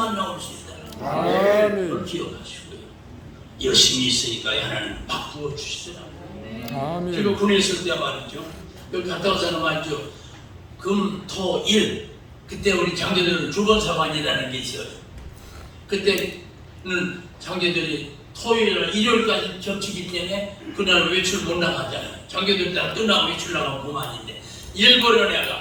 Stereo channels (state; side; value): identical; both; correlation 1.00